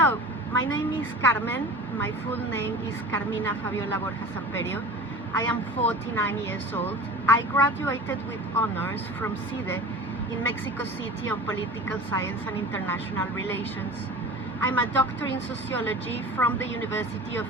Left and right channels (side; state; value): both; normal; correlation 0.37